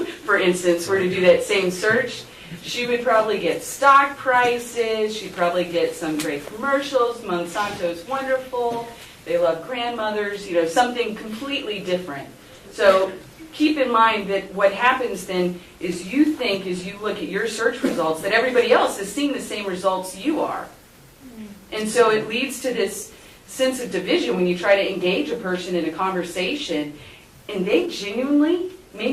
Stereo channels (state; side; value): identical; both; correlation 1.00